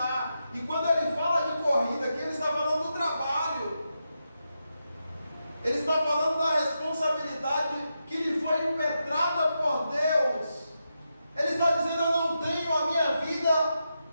E quando ele fala de corrida aqui, ele está falando do trabalho, ele está falando da responsabilidade que lhe foi impetrada por Deus. Ele está dizendo: eu não tenho a minha vida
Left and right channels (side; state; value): both; inverted; correlation -0.87